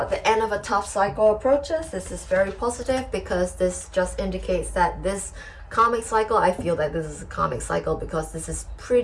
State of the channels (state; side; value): identical; both; correlation 1.00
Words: the end of a tough cycle approaches. This is very positive, because this just indicates that this Karmic cycle, I feel that this is a karmic cycle because this is